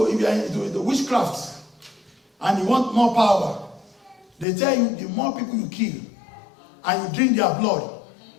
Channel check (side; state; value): right; drops out; at 4.5 s